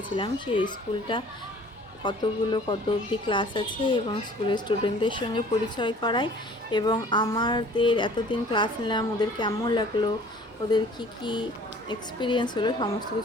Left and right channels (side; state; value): both; normal; correlation 0.50